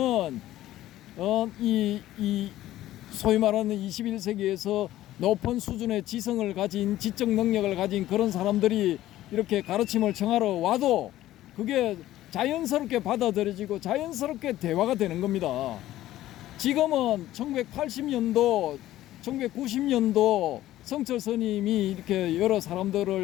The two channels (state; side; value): quieter; right; 14.4 dB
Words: 이 소위 말하는 21세기에서 높은 수준의 지성을 가진 지적 능력을 가진 그런 사람들이 이렇게 가르침을 청하러 와도 그게 자연스럽게 받아들여지고 자연스럽게 대화가 되는 겁니다. 지금은 1980년도, 1990년도 성철 스님이 이렇게 여러